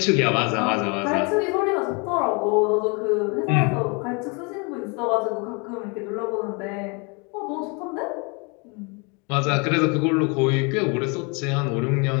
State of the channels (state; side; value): quieter; right; 31.7 dB